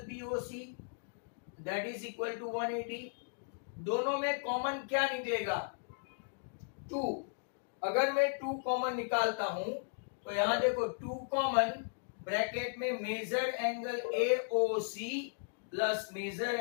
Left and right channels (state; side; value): silent; right; digital silence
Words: BOC, that is equal to 180। दोनों में कॉमन क्या निकलेगा? 2। अगर मैं 2 कॉमन निकालता हूं तो यहां देखो 2 कॉमन, ब्रैकेट में major angle AOC plus major